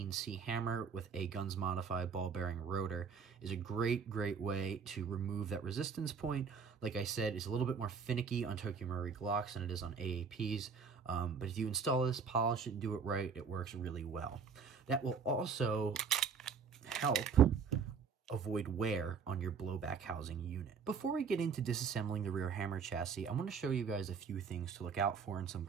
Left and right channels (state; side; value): quieter; left; 5.9 dB